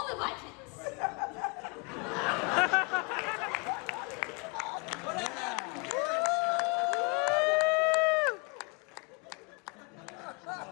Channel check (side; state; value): right; quieter; 32.2 dB